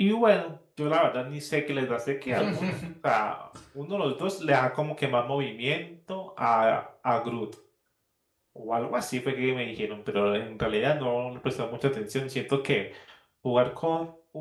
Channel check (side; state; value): both; identical; correlation 1.00